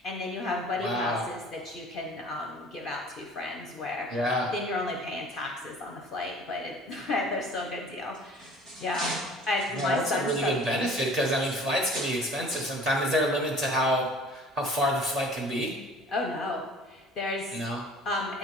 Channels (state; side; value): normal; both; correlation 0.47